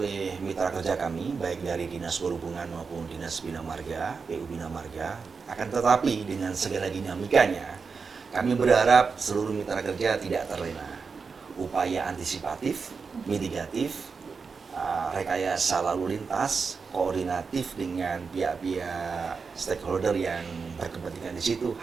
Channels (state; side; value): quieter; left; 5.1 dB